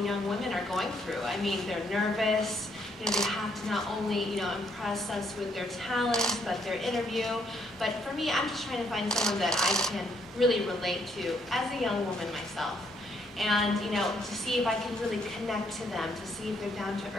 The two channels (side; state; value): both; normal; correlation 0.71